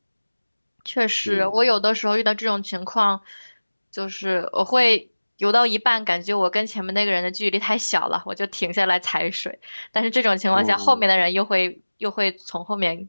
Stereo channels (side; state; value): both; inverted; correlation -1.00